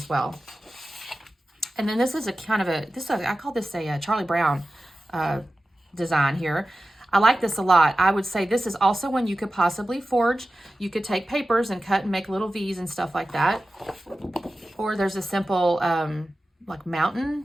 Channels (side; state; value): both; normal; correlation 0.94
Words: well. And then this is a kind of I call this a Charlie Brown design here. I like this a lot. I would say this is also one you could possibly forge. You could take papers and cut and make little V's and stuff like that. Or there's a simple like mountain